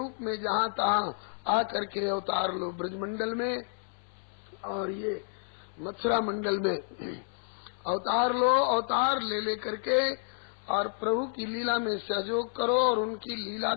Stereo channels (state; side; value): silent; right; 58 dB below the other